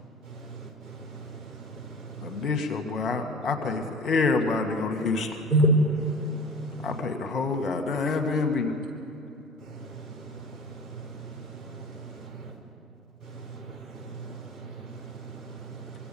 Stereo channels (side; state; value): both; normal; correlation 0.39